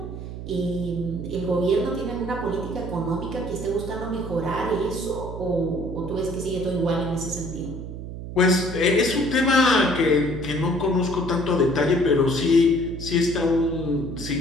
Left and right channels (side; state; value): right; noise; hum, 9 dB below the sound